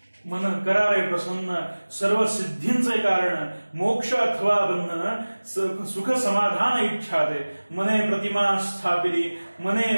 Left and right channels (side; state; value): both; inverted; correlation -1.00